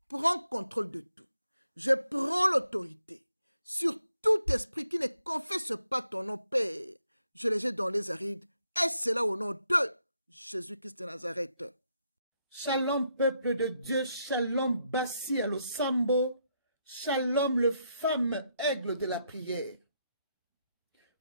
Prends contrôle de tout. Je prends l'autorité sur tout esprit qui ne confesse pas ton nom, Père. Je les jette dans les arides, et c'est là au nom de Jésus-Christ de Nazareth. Shalom, peuple de Dieu, shalom, Bassi à l'Osambo, shalom, le fameux aigle de la prière.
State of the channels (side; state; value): both; inverted; correlation -0.78